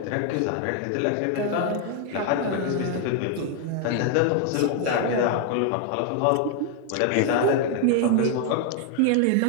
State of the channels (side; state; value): both; different; correlation 0.00